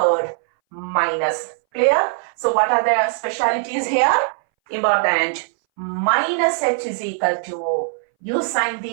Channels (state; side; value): silent; left; 62 dB below the other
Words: minus. Clear? So what are the specialities here? Important. Minus h is equal to u sine